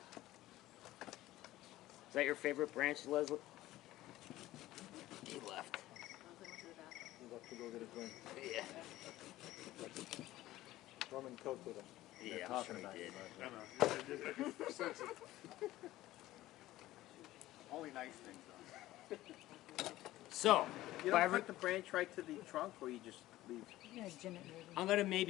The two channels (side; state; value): right; quieter; 15.9 dB